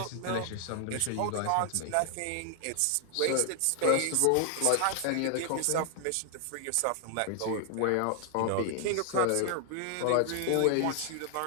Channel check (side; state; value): both; different; correlation 0.00